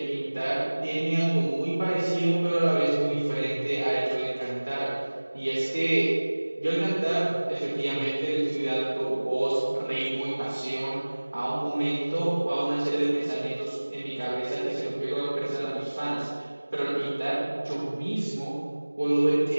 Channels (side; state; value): both; inverted; correlation -1.00